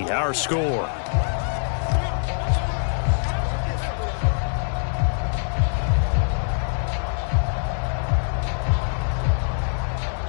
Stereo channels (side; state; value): right; silent; 63 dB below the other